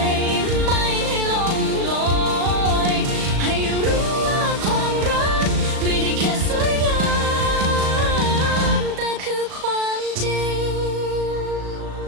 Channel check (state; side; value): late; left; 37 ms